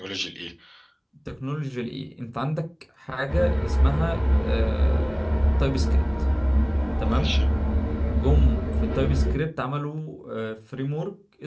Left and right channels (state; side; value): identical; both; correlation 1.00